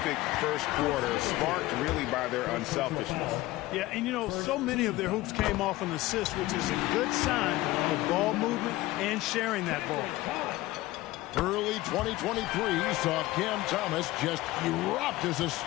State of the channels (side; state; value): right; quieter; 18.0 dB